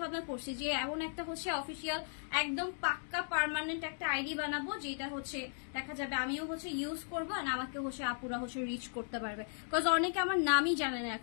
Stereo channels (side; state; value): right; silent; digital silence